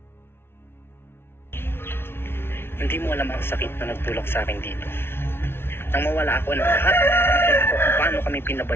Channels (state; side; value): late; right; 0.12 ms